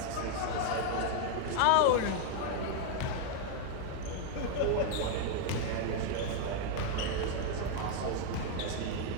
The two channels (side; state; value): both; different; correlation 0.00